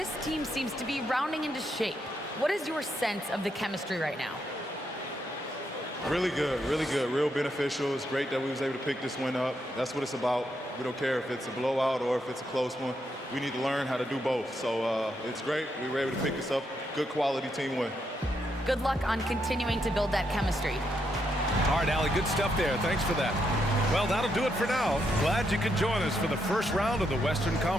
team seems to be rounding into shape. What is your sense of the chemistry right now? Really good, real beneficial. It's great that we was able to pick this one up. That's what it's about. We don't care if it's a blowout or if it's a close one. We need to learn how to do both. So it's great. We were able to pick this up. Good quality team win. Good luck on continuing to build that chemistry. All right, Allie, good stuff there. Thanks for that. Well, that'll do it for now. Glad you could join us for the first round of the Western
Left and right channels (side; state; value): both; normal; correlation 0.79